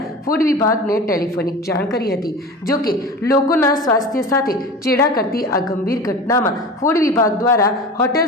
ફૂડ વિભાગને ટેલિફોનિક જાણ કરી હતી। જોકે લોકોના સ્વાસ્થ્ય સાથે ચેડા કરતી આ ગંભીર ઘટનામાં ફૂડ વિભાગ દ્વારા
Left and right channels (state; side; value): normal; both; correlation 0.33